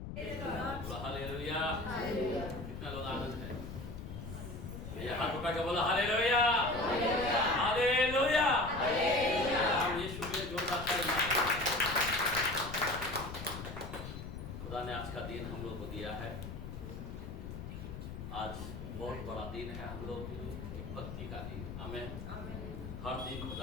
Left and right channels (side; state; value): left; noise; rumble, 8 dB below the sound